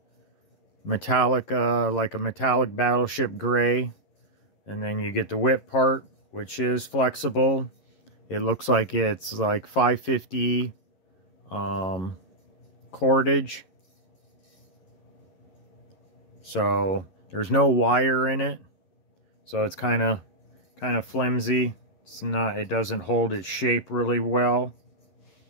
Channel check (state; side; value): late; right; 11 ms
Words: metallic, like a metallic battleship gray. And then you get the whip part, which is flexible. It looks like it's like 550 cordage. So there's no wire in it. So it's kind of flimsy. It doesn't hold its shape really well.